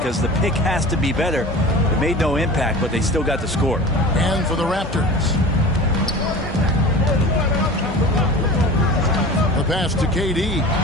the pick has to be better. It made no impact, but they still got the score. And for the Raptors, the pass to KD.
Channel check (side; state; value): both; normal; correlation 0.37